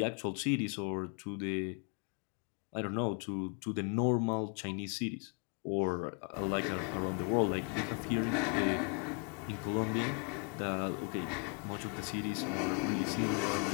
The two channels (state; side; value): quieter; right; 36.4 dB